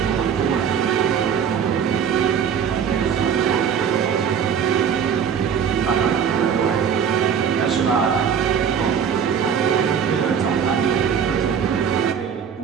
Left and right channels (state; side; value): quieter; left; 7.6 dB